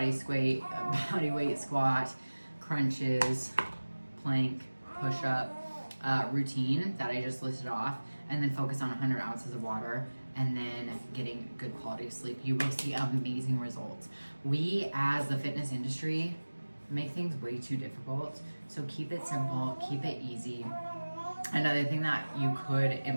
weight squat, crunches, plank, push-up routine that I just listed off, and then focus on 100 ounces of water, and then getting good quality sleep, you will see amazing results. We, as the fitness industry, make things way too difficult. So keep it simple, keep it easy. Another thing that you could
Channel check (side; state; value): both; inverted; correlation -1.00